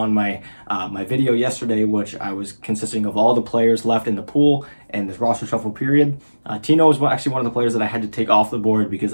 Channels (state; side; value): inverted; both; correlation -1.00